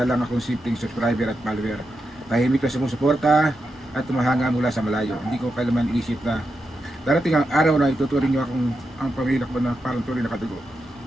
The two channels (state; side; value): normal; both; correlation 0.87